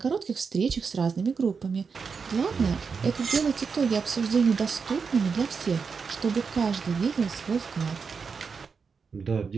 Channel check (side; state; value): left; quieter; 5.5 dB